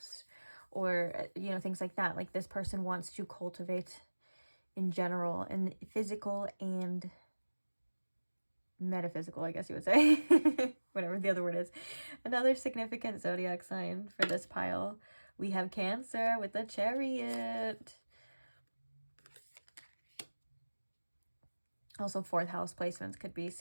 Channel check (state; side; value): inverted; both; correlation -1.00